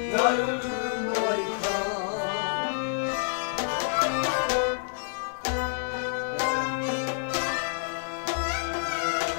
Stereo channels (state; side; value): silent; right; digital silence